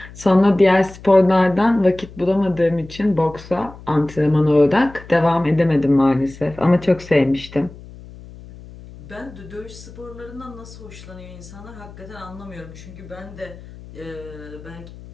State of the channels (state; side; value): noise; left; hum, 18 dB below the sound